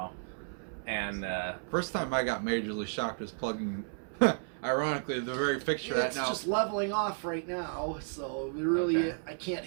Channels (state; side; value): silent; left; 56 dB below the other